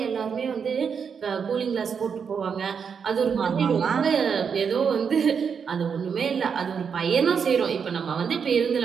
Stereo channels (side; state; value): left; quieter; 6.5 dB